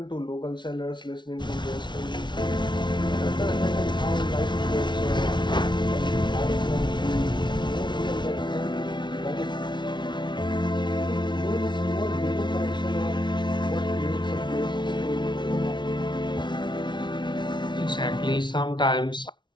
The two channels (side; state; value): right; late; 0.22 ms